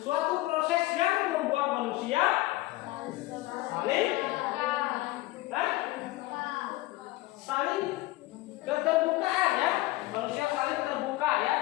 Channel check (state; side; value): quieter; right; 18.7 dB